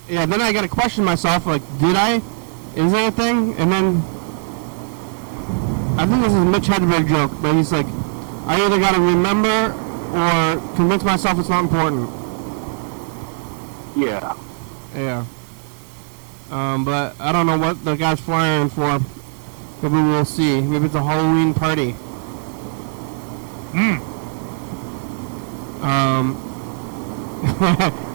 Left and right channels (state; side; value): silent; left; digital silence